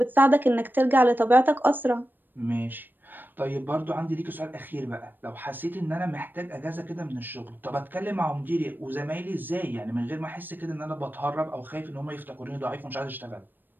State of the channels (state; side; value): late; left; 0.092 ms